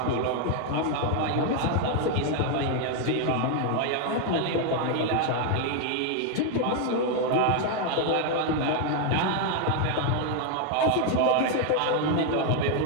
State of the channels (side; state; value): both; different; correlation 0.00